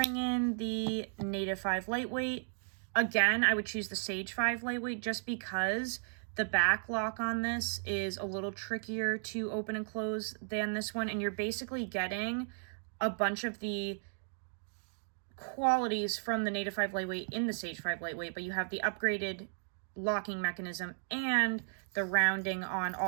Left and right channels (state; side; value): silent; left; digital silence